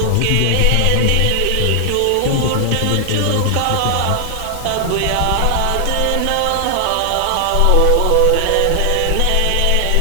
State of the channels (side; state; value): both; different; correlation 0.00